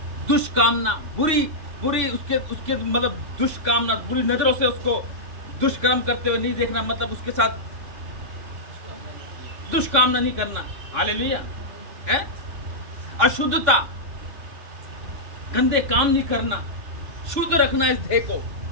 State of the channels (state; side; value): late; left; 2.6 ms